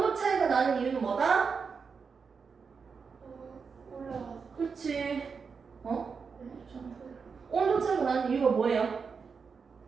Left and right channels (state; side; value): quieter; left; 5.5 dB